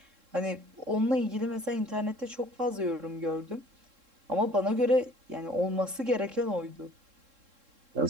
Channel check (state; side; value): late; left; 3.7 ms